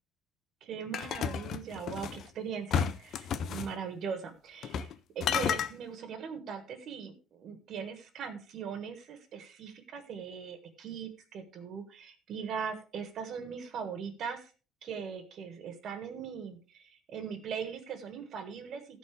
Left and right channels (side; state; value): both; normal; correlation 0.53